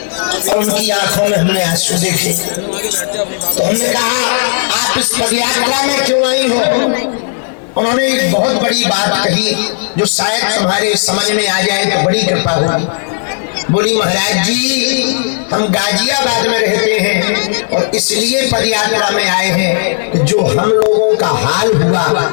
और उनकी आंखों में हमने आंसू देखे। तो हमने कहा आप इस पदयात्रा में क्यों नहीं हो? उन्होंने एक बहुत बड़ी बात कही जो शायद तुम्हारे समझ में आ जाए तो बड़ी कृपा होगी। बोली महाराज जी हम गाजियाबाद में रहते हैं और इसलिए पदयात्रा में आए हैं कि जो हम लोगों का हाल हुआ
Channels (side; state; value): right; silent; digital silence